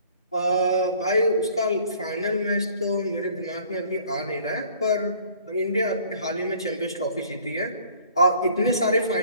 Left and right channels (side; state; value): both; inverted; correlation -0.55